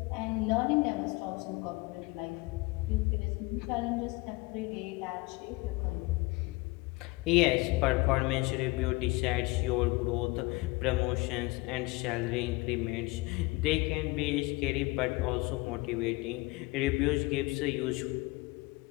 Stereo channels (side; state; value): right; quieter; 23.9 dB